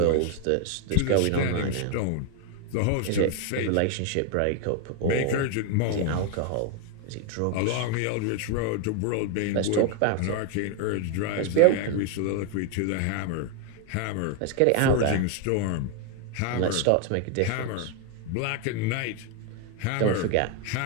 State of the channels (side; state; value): both; different; correlation 0.01